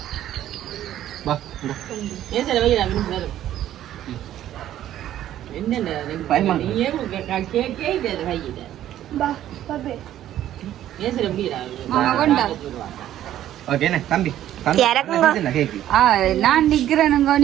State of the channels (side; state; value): left; quieter; 12.2 dB